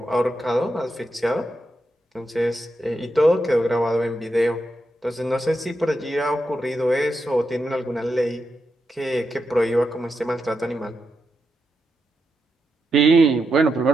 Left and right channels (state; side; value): normal; both; correlation 0.85